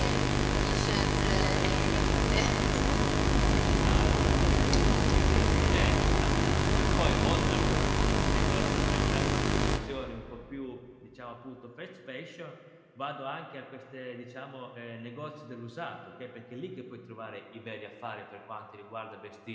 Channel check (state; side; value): identical; both; correlation 1.00